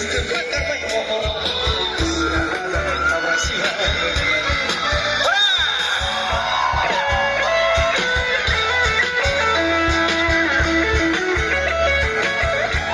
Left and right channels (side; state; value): both; identical; correlation 1.00